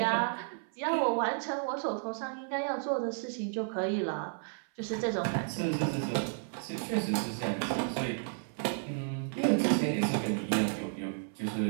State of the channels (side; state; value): left; silent; 55 dB below the other